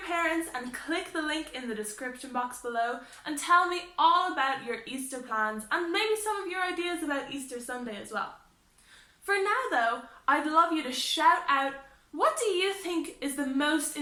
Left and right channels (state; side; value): identical; both; correlation 1.00